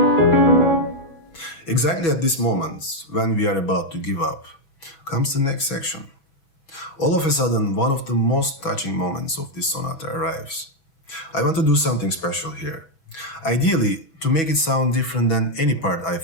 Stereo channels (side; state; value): right; late; 6.1 ms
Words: Exactly at this moment, when we are about to give up, comes the next section. All of a sudden, one of the most touching moments of this sonata arrives. I want to do something special here. Ideally, to make it sound different than any part